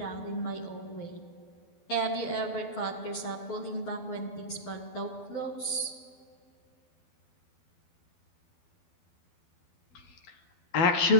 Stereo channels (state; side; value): late; right; 12 ms